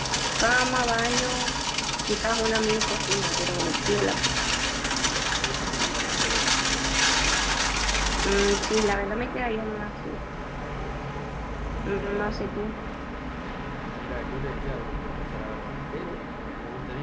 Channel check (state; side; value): identical; both; correlation 1.00